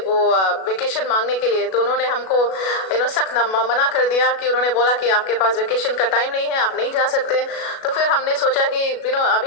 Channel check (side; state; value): right; late; 37 ms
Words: वेकेशन मांगने के लिए। तो उन्होंने हमको सख्त मना कर दिया कि उन्होंने बोला कि आपके पास वेकेशन का टाइम नहीं है, आप नहीं जा सकते। तो फिर हमने सोचा कि